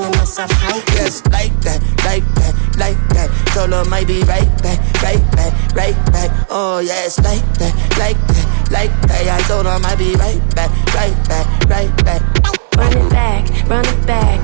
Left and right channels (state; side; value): silent; left; digital silence